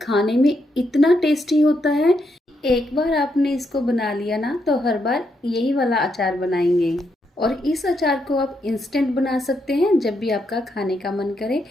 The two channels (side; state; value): both; normal; correlation 0.79